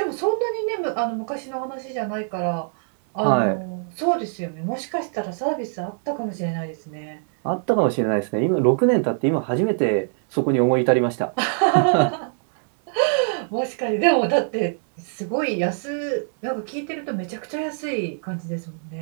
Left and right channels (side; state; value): left; silent; digital silence